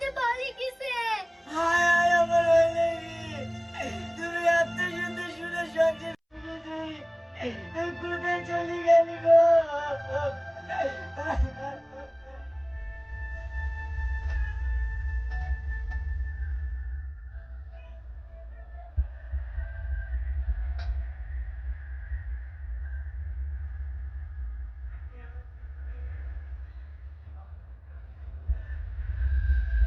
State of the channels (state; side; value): identical; both; correlation 1.00